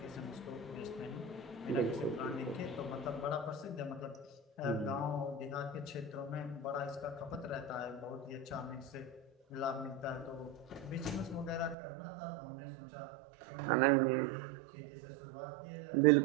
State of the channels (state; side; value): drops out; left; at 11.8 s